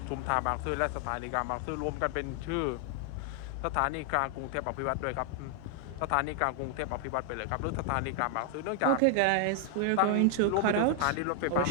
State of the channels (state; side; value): different; both; correlation 0.00